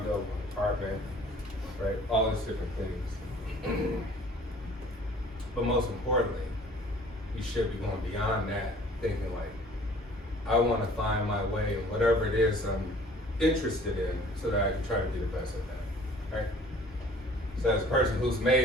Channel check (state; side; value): normal; both; correlation 0.51